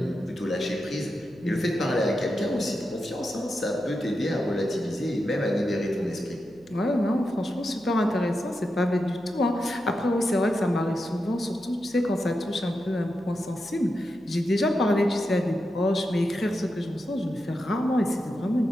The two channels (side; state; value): left; noise; hum, 28 dB below the sound